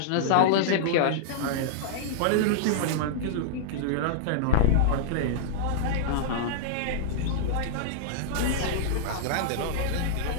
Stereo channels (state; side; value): different; both; correlation -0.01